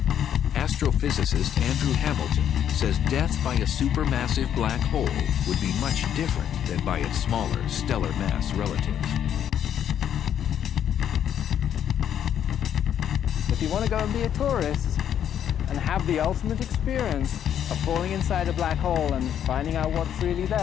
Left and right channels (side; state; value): right; quieter; 9.6 dB